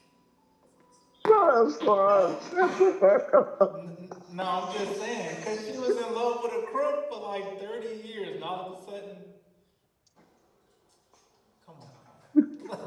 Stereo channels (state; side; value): identical; both; correlation 1.00